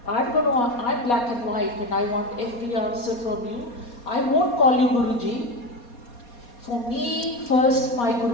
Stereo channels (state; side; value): late; right; 4.2 ms